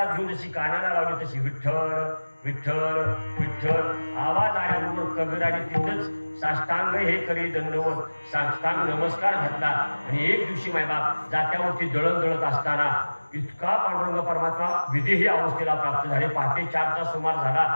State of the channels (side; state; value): both; inverted; correlation -1.00